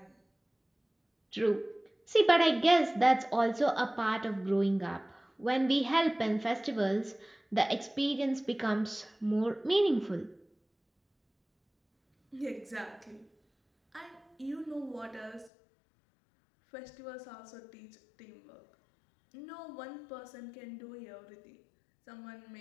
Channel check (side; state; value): right; drops out; at 15.5 s